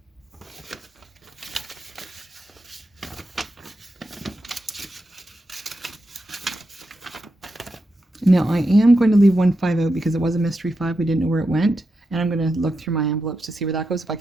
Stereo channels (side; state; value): both; normal; correlation 0.87